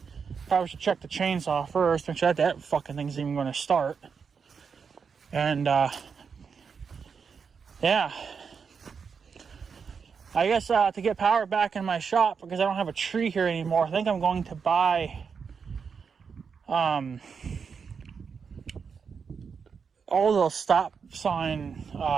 probably should check the chainsaw first, make sure that fucking thing's even going to start. And yeah, I guess to get power back in my shop, because I don't have a tree here anymore, I think I'm going to buy all those stop sign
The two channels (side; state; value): left; quieter; 6.0 dB